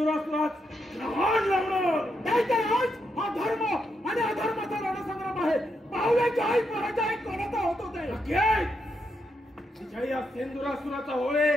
ग्रहण लावणार. दैत्यराज, हा धर्म आणि अधर्माचा रणसंग्राम आहे. पाहुण्याची आई पराजय कोणाचा होतो ते. विजय या सिंधुरासुराचा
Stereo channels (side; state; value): both; normal; correlation 0.82